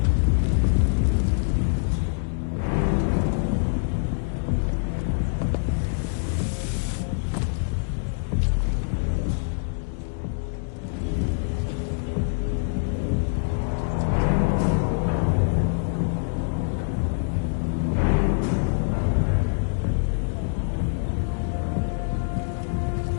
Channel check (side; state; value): right; silent; digital silence